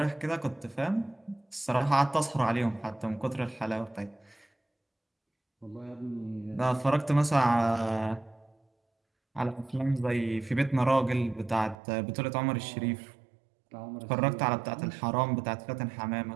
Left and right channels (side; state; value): left; drops out; at 11.8 s